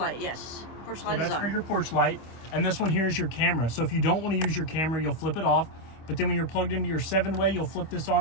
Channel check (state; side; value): late; right; 25 ms